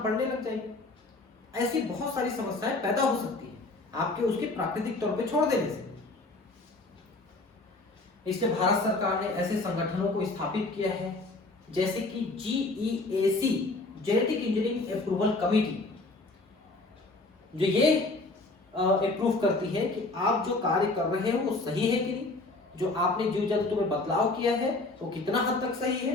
लग जाएगी। ऐसी बहुत सारी समस्याएं पैदा हो सकती है आपके उसके प्राकृतिक तौर पे छोड़ देने से। इसलिए भारत सरकार ने ऐसे संगठनों को स्थापित किया है जैसे कि GEAC, genetic engineering approval committee, जो ये अप्रूव करती है कि आप जो कार्य कर रहे हो वो सही है कि नहीं, जो आपने जीव जंतु में बदलाव किया है वो कितना हद तक सही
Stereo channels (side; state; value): right; quieter; 3.1 dB